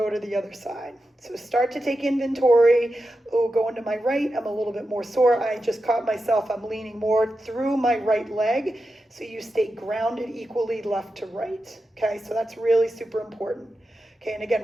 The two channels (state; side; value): normal; both; correlation 0.90